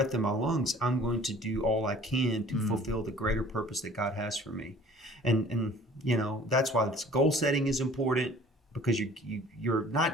in my lungs, I'm going to do all I can to fulfill the greater purpose that God has for me. And you know, that's why this goal setting is important, because you're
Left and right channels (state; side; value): normal; both; correlation 0.50